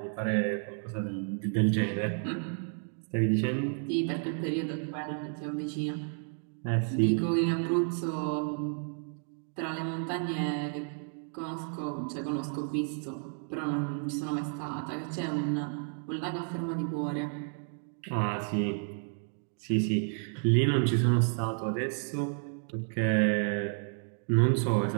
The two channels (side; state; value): left; silent; 55 dB below the other